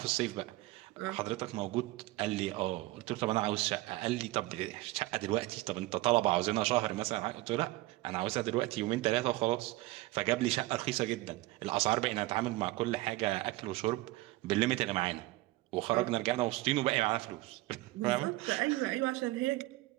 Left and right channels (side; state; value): left; quieter; 19.2 dB